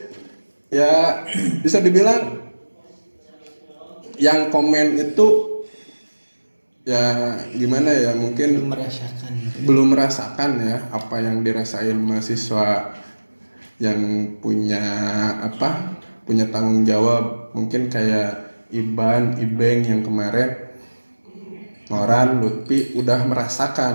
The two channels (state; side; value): inverted; both; correlation -1.00